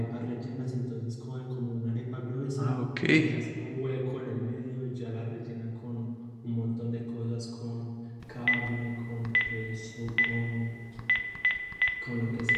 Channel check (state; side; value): identical; both; correlation 1.00